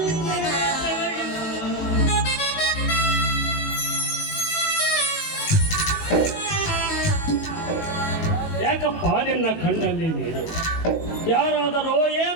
ಯಾಕಪ್ಪ ನಿನ್ನ ಕಣ್ಣಲ್ಲಿ ನೀರು? ಯಾರಾದರೂ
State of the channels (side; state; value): right; late; 18 ms